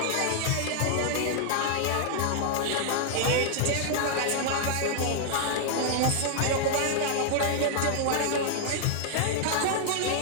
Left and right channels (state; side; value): different; both; correlation 0.00